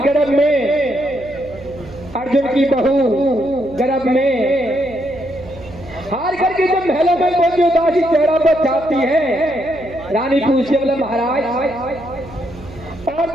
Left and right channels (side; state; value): right; noise; hum, 16 dB below the sound